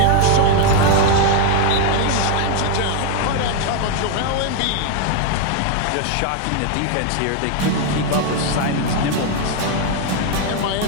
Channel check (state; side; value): different; both; correlation 0.01